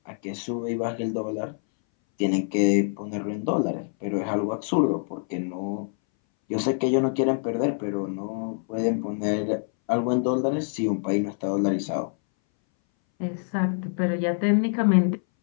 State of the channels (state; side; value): silent; right; 60 dB below the other